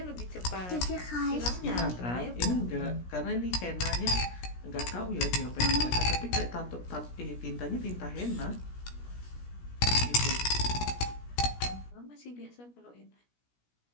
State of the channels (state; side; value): late; right; 17 ms